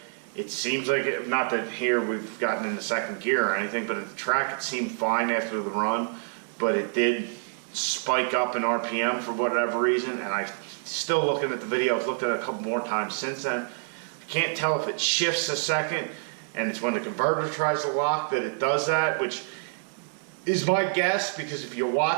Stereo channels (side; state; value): left; silent; 60 dB below the other